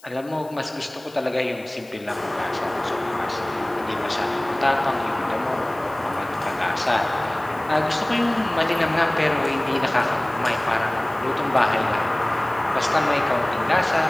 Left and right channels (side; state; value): left; noise; hiss, 25 dB below the sound